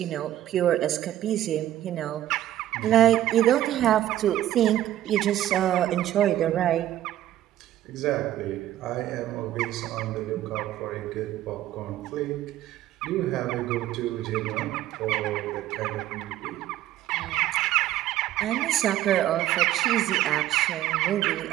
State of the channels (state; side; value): quieter; left; 13.2 dB